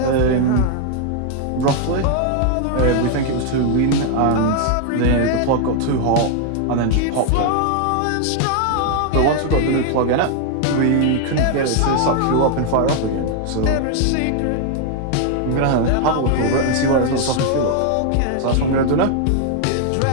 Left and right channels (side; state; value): both; different; correlation 0.00